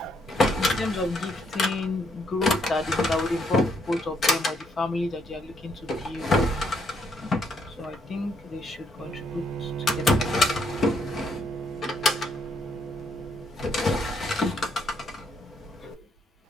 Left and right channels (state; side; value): normal; both; correlation 0.73